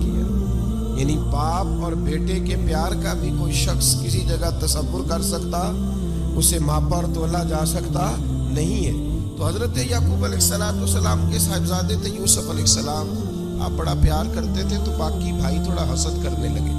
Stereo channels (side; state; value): both; identical; correlation 1.00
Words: یعنی باپ اور بیٹے کے پیار کا بھی کوئی شخص کسی جگہ تصور کر سکتا، اسے ماپا اور تولا جا سکتا نہیں ہے۔ تو حضرت یعقوب علیہ السلام کے صاحبزادے تھے یوسف علیہ السلام، آپ بڑا پیار کرتے تھے تو باقی بھائی تھوڑا حسد کرنے لگے،